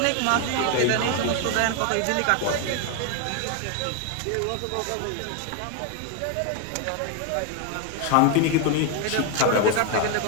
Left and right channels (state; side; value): different; both; correlation 0.01